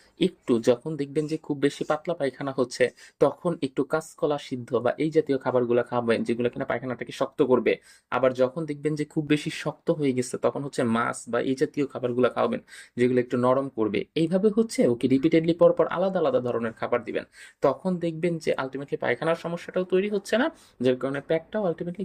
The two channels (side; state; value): both; identical; correlation 1.00